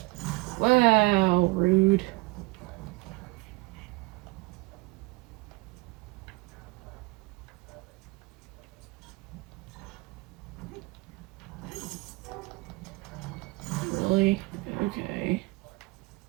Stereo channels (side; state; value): left; quieter; 24.9 dB